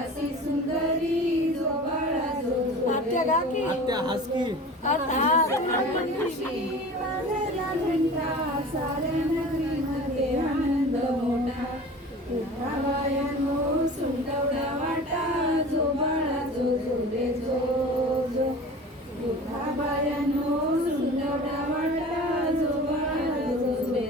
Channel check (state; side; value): normal; both; correlation 0.39